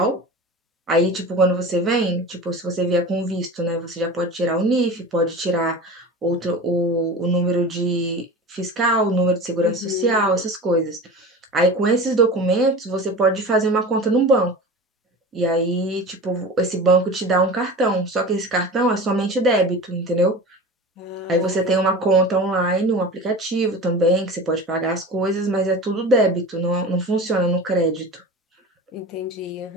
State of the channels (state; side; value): normal; both; correlation 0.33